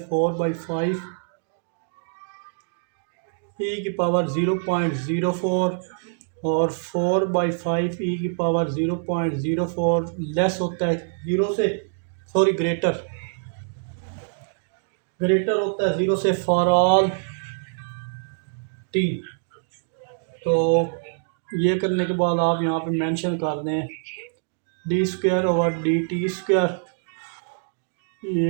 4/5 ई की पावर 0.04 और 4/5 ई की पावर 0.04 लेस होता है 0 से, सॉरी ग्रेटर होता है 0 से फॉर ऑल टी। तो ये करने के बाद आप यहाँ पे मेंशन कर दें D square over D t square,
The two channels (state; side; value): silent; left; digital silence